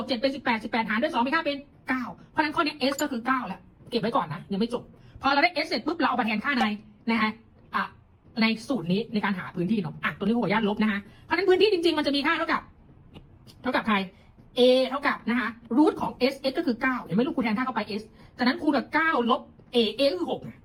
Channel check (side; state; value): both; identical; correlation 1.00